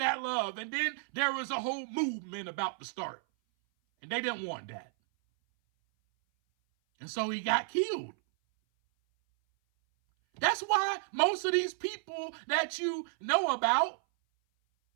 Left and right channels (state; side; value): silent; left; 56 dB below the other